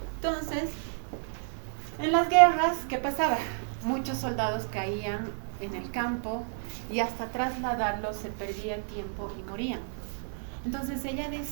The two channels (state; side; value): silent; left; 57 dB below the other